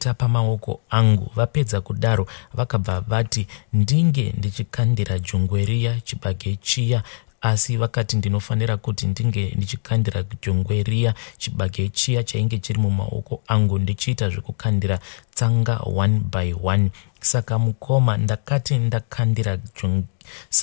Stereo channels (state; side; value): silent; right; digital silence